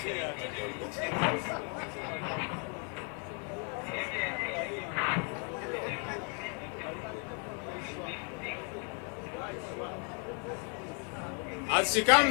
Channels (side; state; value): right; quieter; 38.9 dB